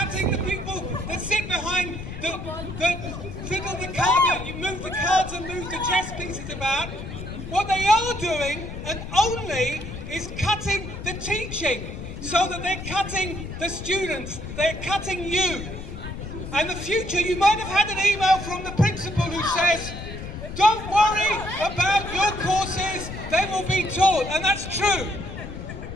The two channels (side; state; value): left; noise; rumble, 9 dB below the sound